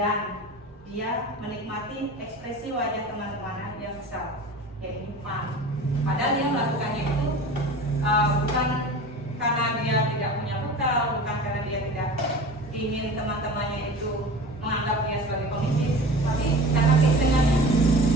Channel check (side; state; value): both; normal; correlation 0.37